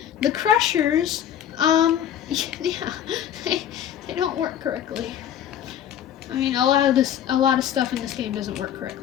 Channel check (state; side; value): quieter; right; 10.2 dB